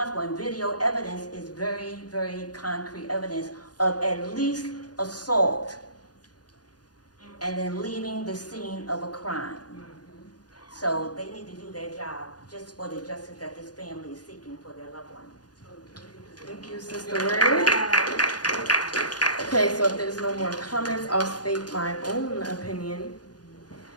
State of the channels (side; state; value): right; late; 0.69 ms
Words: and video evidence is very, very concrete evidence of at least assault and then leaving the scene of a crime. So they need to do their job just for the justice that this family is seeking for their loved one. Thank you, Sister Word. Okay, so if there's no more comments, I'll state my own opinion.